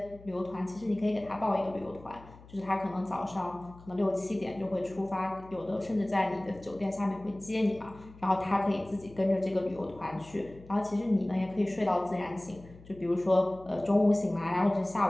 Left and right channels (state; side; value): noise; left; hum, 21 dB below the sound